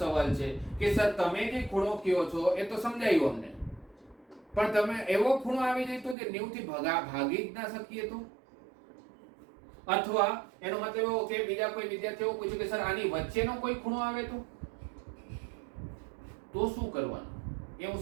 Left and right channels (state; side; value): drops out; left; at 6.2 s